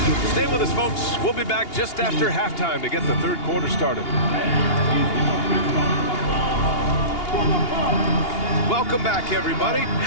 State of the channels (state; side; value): late; right; 2.8 ms